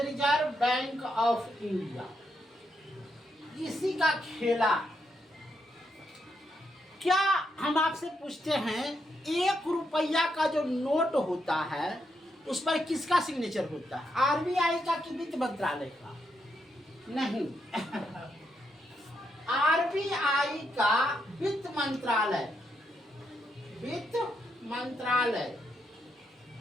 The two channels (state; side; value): normal; both; correlation 0.80